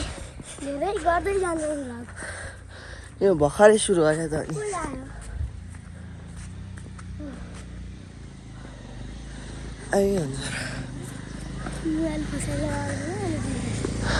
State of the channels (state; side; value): identical; both; correlation 1.00